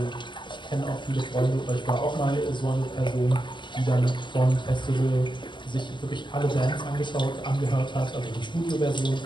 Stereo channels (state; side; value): late; right; 0.22 ms